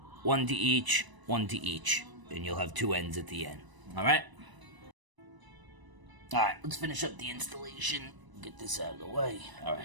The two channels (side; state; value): left; late; 1.0 ms